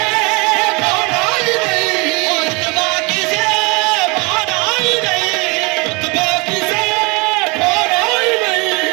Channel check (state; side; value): quieter; left; 28.0 dB